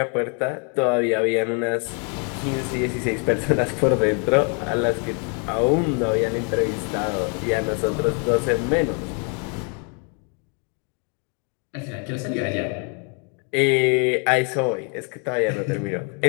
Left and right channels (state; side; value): quieter; right; 37.9 dB